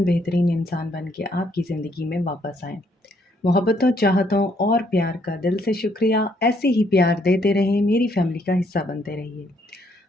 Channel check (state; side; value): normal; both; correlation 0.70